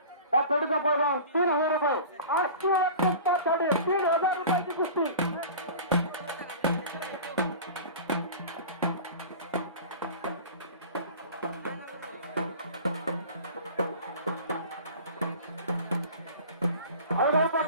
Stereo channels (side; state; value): both; inverted; correlation -0.38